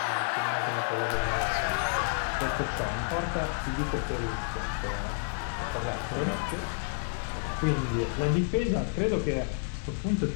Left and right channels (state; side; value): silent; right; 57 dB below the other